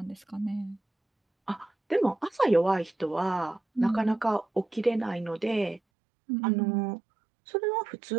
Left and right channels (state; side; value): drops out; left; at 5.8 s